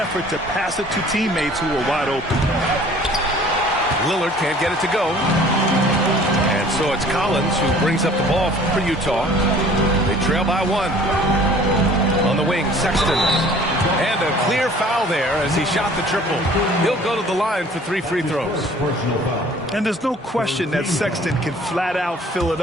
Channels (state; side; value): normal; both; correlation 0.51